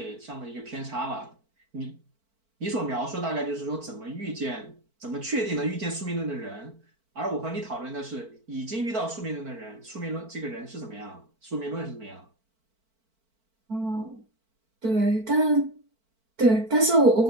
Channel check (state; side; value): late; left; 4.5 ms